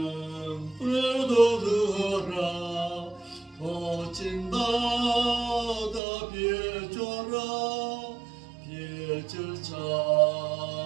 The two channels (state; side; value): drops out; left; at 6.0 s